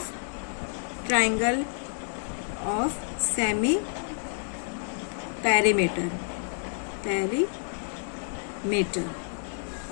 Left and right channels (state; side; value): silent; right; 59 dB below the other